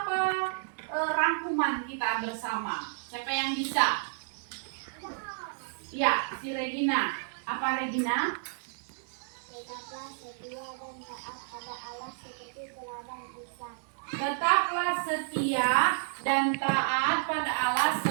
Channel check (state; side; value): silent; left; digital silence